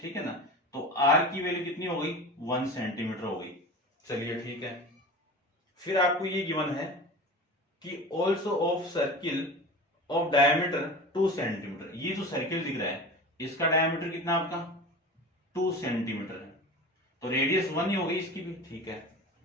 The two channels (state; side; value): normal; both; correlation 0.33